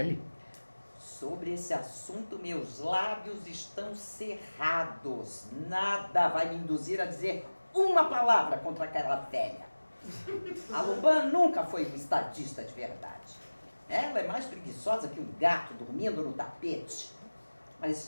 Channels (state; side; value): inverted; both; correlation -1.00